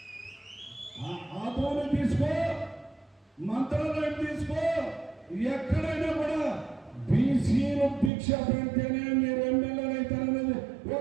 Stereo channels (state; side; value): drops out; left; at 8.1 s